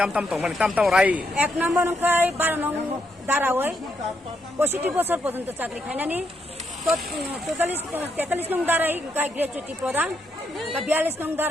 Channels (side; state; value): both; normal; correlation 0.78